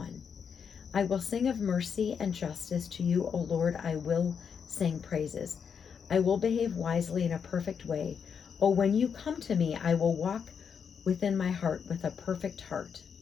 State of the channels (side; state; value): right; quieter; 6.9 dB